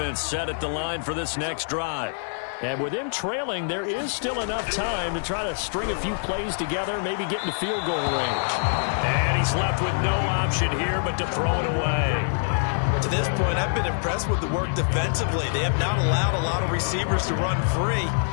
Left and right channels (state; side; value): silent; right; digital silence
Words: set at the line for this next drive. And with him trailing, there is still enough time to try to string a few plays together, maybe get into field goal range. And he's left with no option here but to throw it away. To this point, I've been impressed with the work defensively. They have not allowed a lot of receivers to run free.